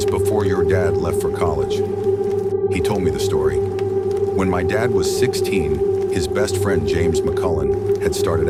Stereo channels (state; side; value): identical; both; correlation 1.00